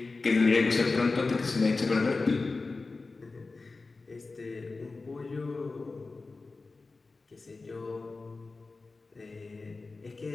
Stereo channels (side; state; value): right; quieter; 3.8 dB